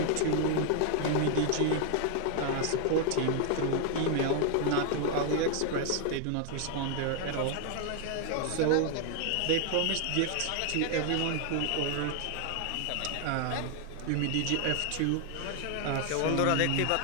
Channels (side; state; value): both; different; correlation 0.00